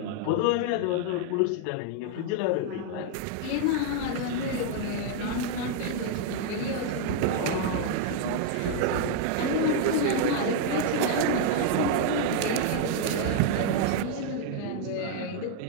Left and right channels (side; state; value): both; different; correlation 0.00